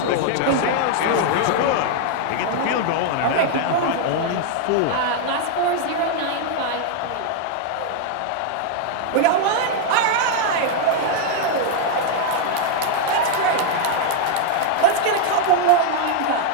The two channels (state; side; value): different; both; correlation 0.00